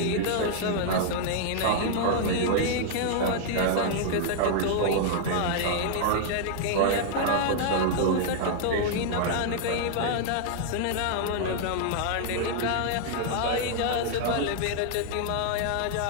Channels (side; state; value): both; different; correlation -0.01